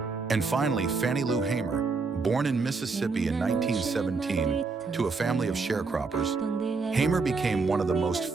And finally, Fannie Lou Hamer. Born in Mississippi in 1917 to a family of sharecroppers, Hamer became one of the most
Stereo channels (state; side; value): quieter; left; 4.4 dB